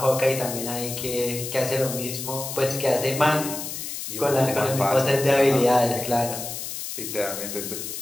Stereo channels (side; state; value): left; noise; hiss, 7 dB below the sound